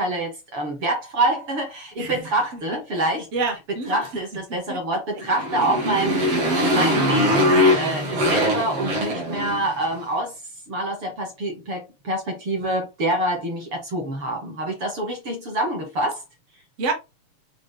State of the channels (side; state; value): left; late; 7.0 ms